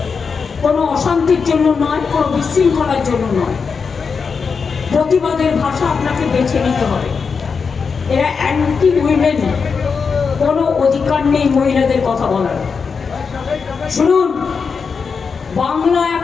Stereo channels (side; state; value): right; quieter; 5.5 dB